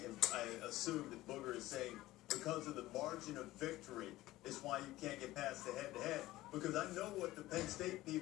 I assume that Booger is saying because of the margin of victory is why you can't get past the head-to-head. Because I know what the Penn State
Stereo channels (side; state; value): right; quieter; 17.0 dB